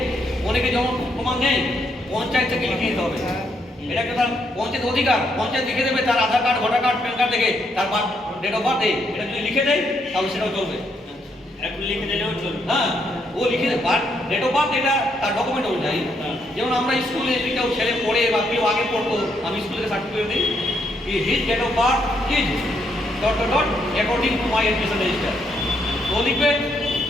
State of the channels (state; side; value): normal; both; correlation 0.75